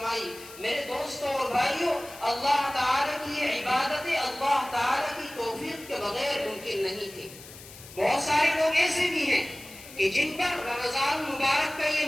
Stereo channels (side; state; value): left; noise; hiss, 17 dB below the sound